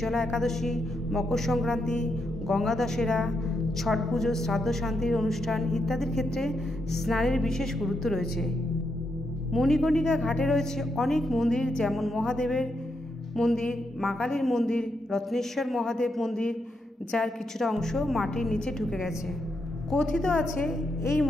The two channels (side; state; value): both; normal; correlation 0.81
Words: একাদশী, মকর সংক্রান্তি, গঙ্গা দশেরা, ছট পুজো, শ্রাদ্ধ শান্তির অনুষ্ঠান ইত্যাদির ক্ষেত্রে স্নানের বিশেষ গুরুত্ব রয়েছে। মণিকর্ণিকা ঘাটে রয়েছে অনেক মন্দির, যেমন মহাদেবের মন্দির, মা কালীর মন্দির, রত্নেশ্বর মহাদেব মন্দির, যার কিছুটা অংশ মাটির নিচে ঢুকে গেছে। কথিত আছে এই